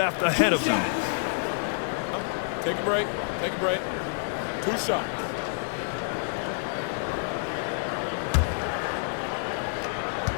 ahead of them. Take a break. Take a break. 2 shots.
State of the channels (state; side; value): silent; right; 59 dB below the other